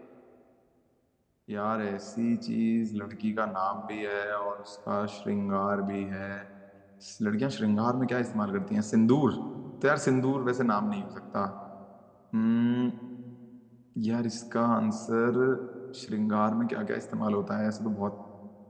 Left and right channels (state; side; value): identical; both; correlation 1.00